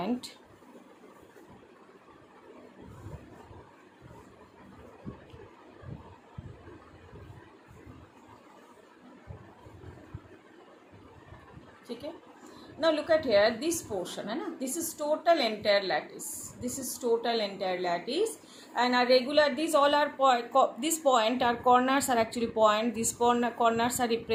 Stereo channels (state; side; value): identical; both; correlation 1.00